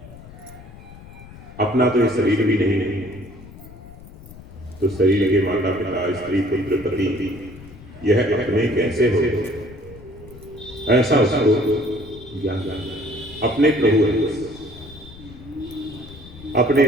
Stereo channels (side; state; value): left; noise; rumble, 18 dB below the sound